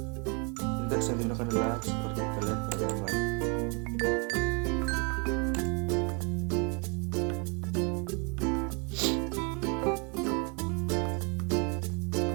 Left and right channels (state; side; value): quieter; left; 33.2 dB